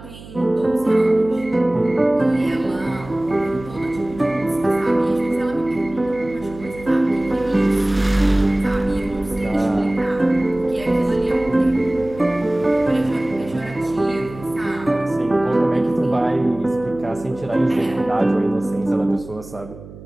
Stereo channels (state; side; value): noise; right; hum, 17 dB below the sound